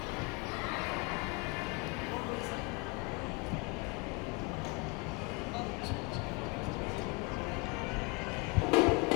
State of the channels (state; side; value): quieter; right; 27.9 dB